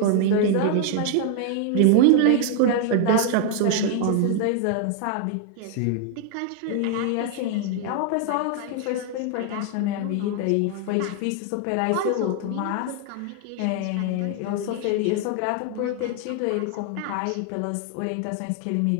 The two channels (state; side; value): different; both; correlation 0.00